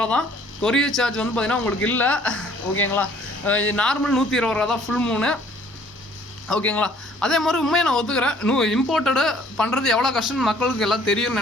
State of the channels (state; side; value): normal; both; correlation 0.57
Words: தான். கொரியர் சார்ஜ் வந்து பார்த்திங்கன்னா உங்களுக்கு இல்லை, ஓகேங்களா? நார்மல் 120 ரூபா தான் ஃபுல் மூணு, ஓகேங்களா? அதே மாதிரி உண்மையை நான் ஒத்துக்கிறேன், இம்போர்ட்டடு பண்ணுறது எவ்வளோ கஷ்டம்னு மக்களுக்கு எல்லாம் தெரியும்னு